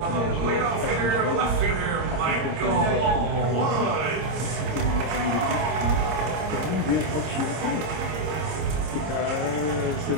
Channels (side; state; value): left; late; 26 ms